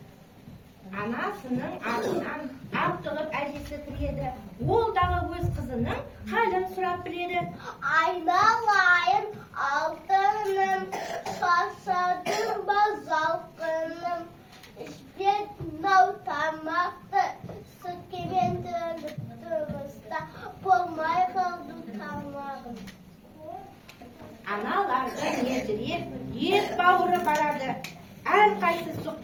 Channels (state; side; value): identical; both; correlation 1.00